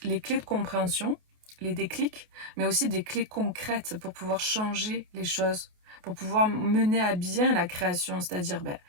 clés de compréhension, les déclics, mais aussi des clés concrètes pour pouvoir changer les choses, pour pouvoir mener à bien la création, c'est-à-dire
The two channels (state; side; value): late; left; 28 ms